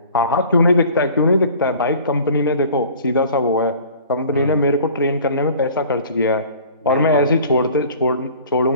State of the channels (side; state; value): both; inverted; correlation -0.47